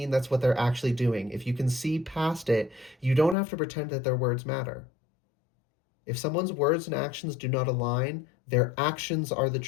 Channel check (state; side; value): drops out; right; at 3.4 s